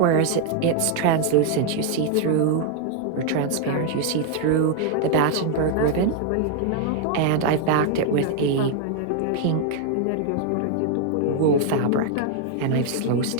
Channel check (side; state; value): both; different; correlation 0.00